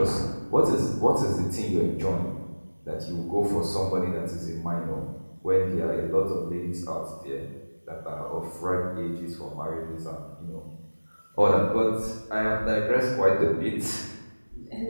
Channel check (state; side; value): inverted; both; correlation -1.00